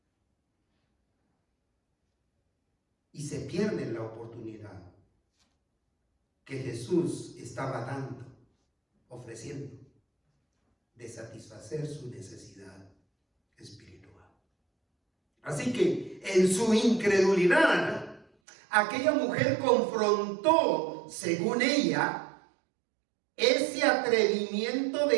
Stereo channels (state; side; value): drops out; left; at 18.2 s